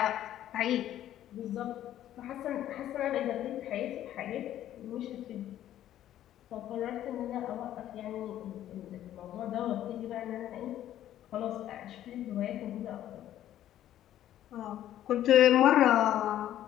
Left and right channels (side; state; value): right; quieter; 12.1 dB